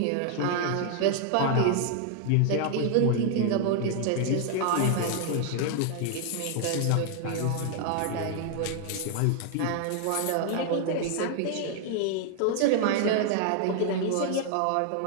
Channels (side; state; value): both; different; correlation 0.00